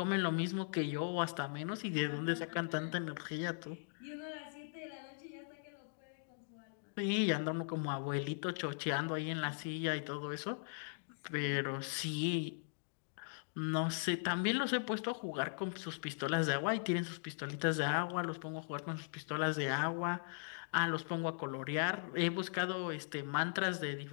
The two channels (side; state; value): right; silent; digital silence